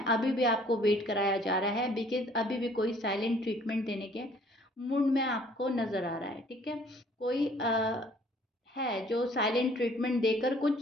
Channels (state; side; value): normal; both; correlation 0.57